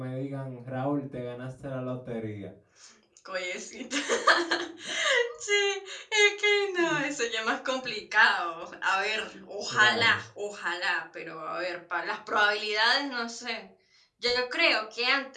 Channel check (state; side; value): identical; both; correlation 1.00